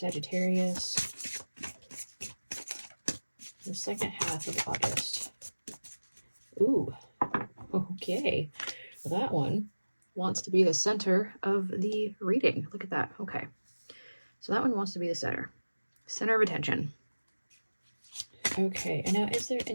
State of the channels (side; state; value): both; inverted; correlation -1.00